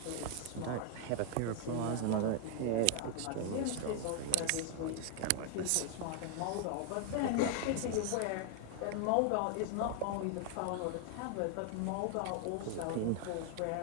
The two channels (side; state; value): both; different; correlation 0.00